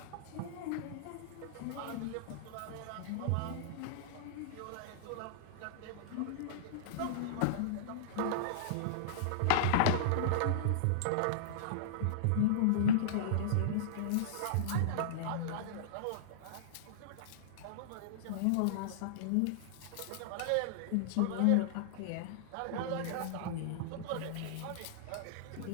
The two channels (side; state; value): both; different; correlation -0.02